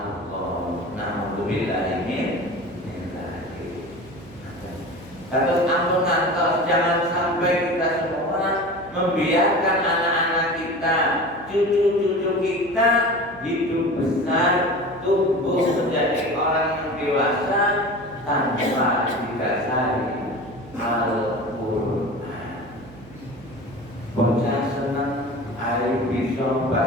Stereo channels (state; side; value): noise; right; hum, 21 dB below the sound